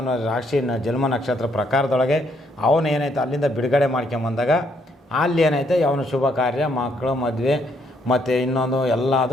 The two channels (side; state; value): both; normal; correlation 0.72